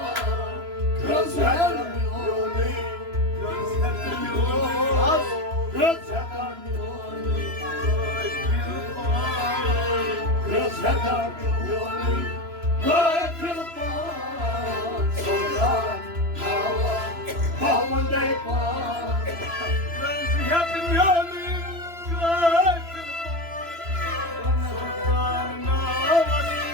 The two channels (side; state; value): left; late; 3.0 ms